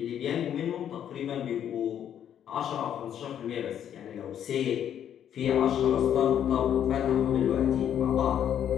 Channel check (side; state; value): right; quieter; 9.7 dB